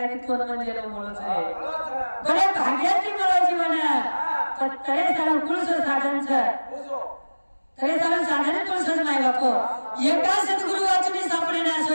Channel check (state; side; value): inverted; both; correlation -1.00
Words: तिथून म्हणजे मुळच आहे बरे भाग्याची मुळ जीवन पण तरे सारा कुळस साधनच तरे सारा साधन कुळसच नाही बापो एका सद्गुरु वाचून सापडे ना